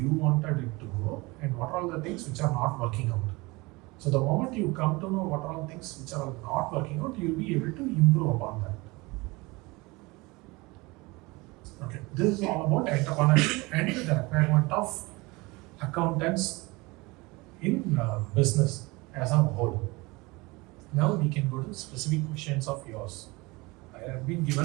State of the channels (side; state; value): left; quieter; 23.9 dB